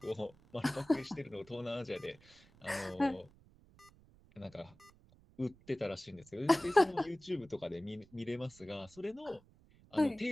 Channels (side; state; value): right; noise; rumble, 26 dB below the sound